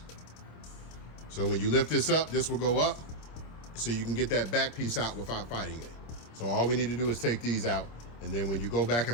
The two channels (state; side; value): late; right; 26 ms